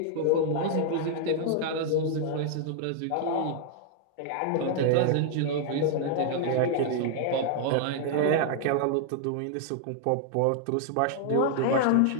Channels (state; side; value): different; both; correlation 0.00